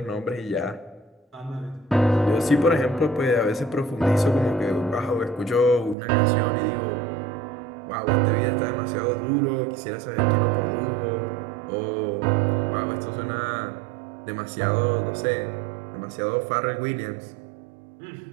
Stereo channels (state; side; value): drops out; left; at 6.0 s